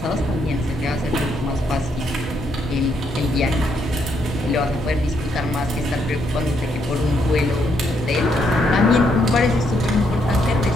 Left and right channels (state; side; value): normal; both; correlation 0.75